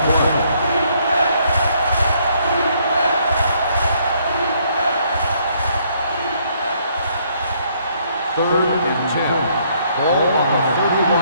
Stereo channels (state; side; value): inverted; both; correlation -0.68